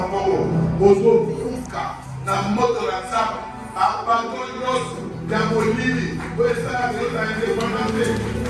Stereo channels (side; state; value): both; identical; correlation 1.00